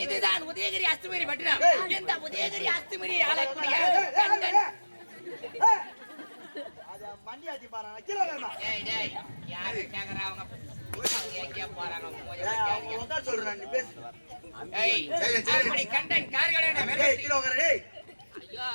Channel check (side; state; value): both; inverted; correlation -1.00